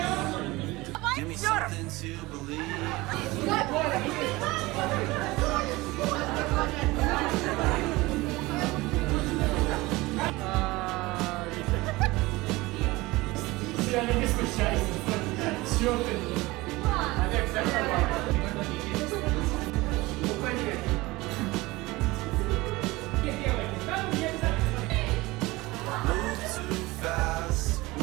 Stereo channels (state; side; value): quieter; left; 21.0 dB